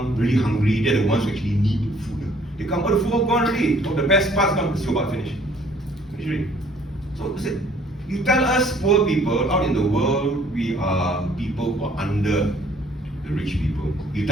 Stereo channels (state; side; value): normal; both; correlation 0.58